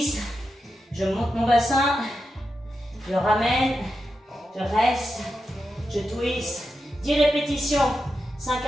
Je monte mon bassin. Je ramène. Je reste. Je twist. 10 répétitions. 5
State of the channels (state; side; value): normal; both; correlation 0.88